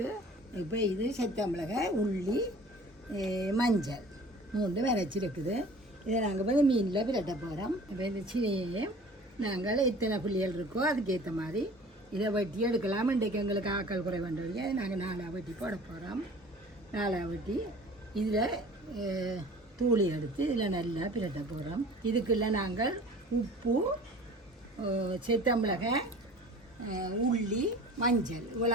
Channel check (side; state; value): both; normal; correlation 0.45